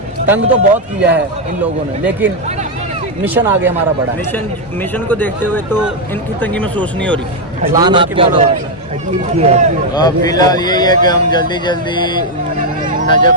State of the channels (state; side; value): normal; both; correlation 0.02